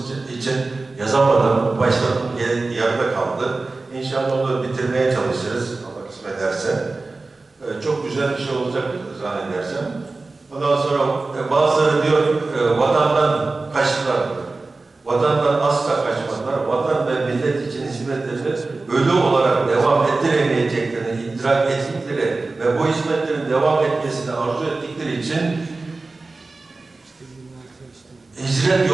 için yazamadım. Başladım, yarıda kaldı. İnşallah onu bitirmeye çalışırız. Allah kısmet ederse. Çok güzel bir şey olacak zannedersem. Ondan sonra bazıları diyor vatandan kaçtılar. Vatandan asla kaçmadılar. Vatan ve millet için hizmetlerini ölü olarak devam ettiremeyeceklerini idrak ettikleri ve bu hizmetlerin devam etmesini arzu ettikleri için hicret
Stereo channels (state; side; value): quieter; left; 3.5 dB